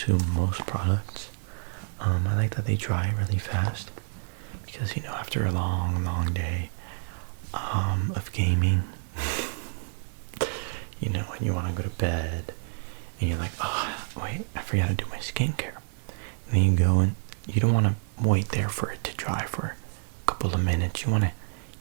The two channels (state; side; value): silent; left; 59 dB below the other